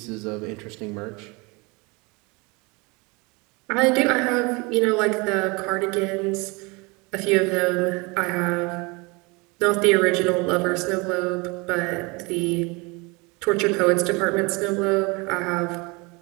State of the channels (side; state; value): left; quieter; 27.4 dB